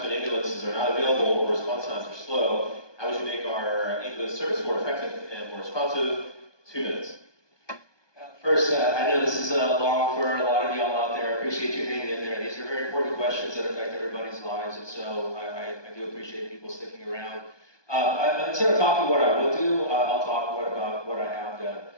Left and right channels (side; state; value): right; late; 1.2 ms